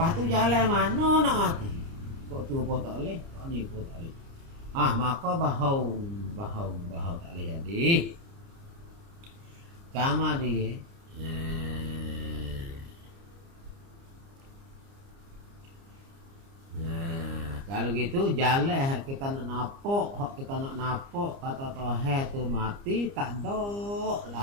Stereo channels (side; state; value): left; late; 29 ms